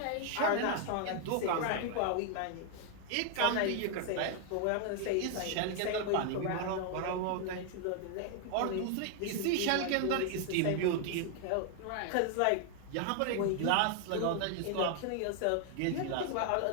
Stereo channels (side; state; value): both; different; correlation 0.00